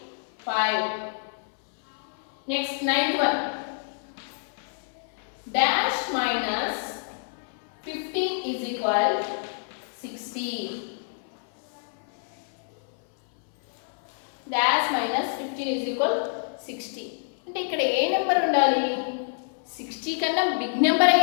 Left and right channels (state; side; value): silent; right; 60 dB below the other